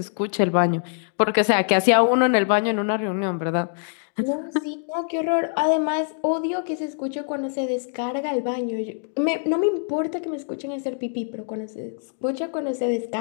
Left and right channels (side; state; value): right; silent; digital silence